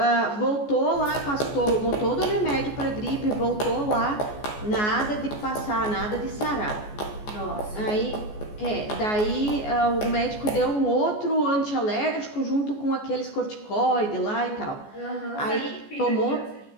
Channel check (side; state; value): right; late; 14 ms